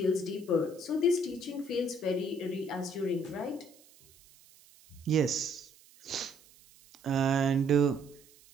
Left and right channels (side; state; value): right; noise; hiss, 26 dB below the sound